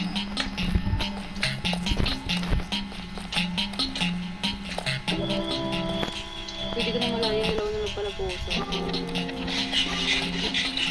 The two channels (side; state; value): both; identical; correlation 1.00